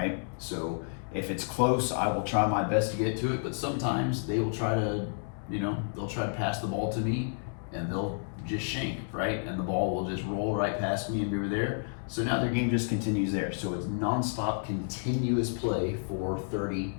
So if it's close, I will try my best to get to it, but sometimes they will try to, they'll try to pass the ball to me, and they'll just shank, right? And the ball will just roll right past me and go there. So now their game just continues there. So it's nonstop, continuous play for 30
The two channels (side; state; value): right; silent; digital silence